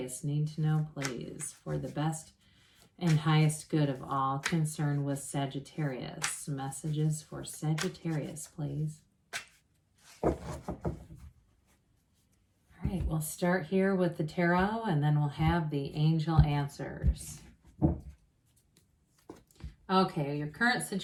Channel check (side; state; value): both; identical; correlation 1.00